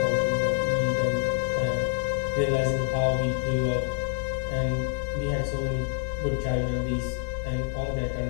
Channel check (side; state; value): right; silent; 60 dB below the other